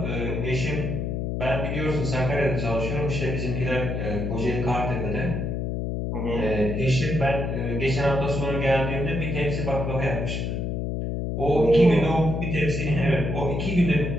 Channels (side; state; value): left; noise; hum, 2 dB below the sound